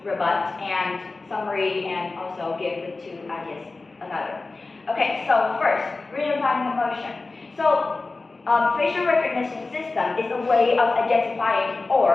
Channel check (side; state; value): right; quieter; 3.6 dB